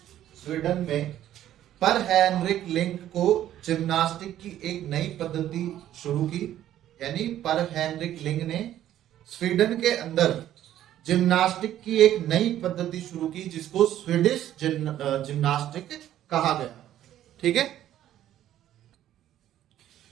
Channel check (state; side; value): quieter; left; 12.1 dB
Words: स्वीडन में पर हेनरिक लिंक को जिम्नास्टिक की एक नई पद्धति शुरू की। यानी पर हेनरिक लिंक ने स्वीडन के अंदर जिम्नास्टिक की एक नई पद्धति शुरू की जिसको स्वीडिश जिम्नास्टिक कहा गया। ठीक है।